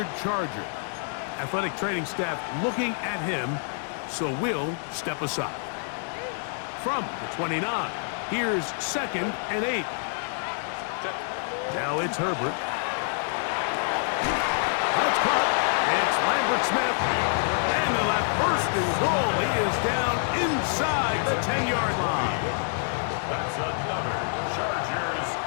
Charger. Athletic training staff looking at him, so we'll step aside. From the 29, here's 2nd and 8. Now it's Herbert. That's caught. It's Lambert Smith. And they'll have first and goal. He is down inside the 10-yard line. That's another Chargers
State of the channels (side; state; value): right; silent; 60 dB below the other